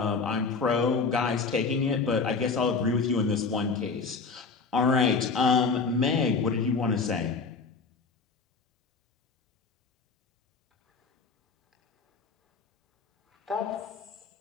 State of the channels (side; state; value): right; quieter; 4.7 dB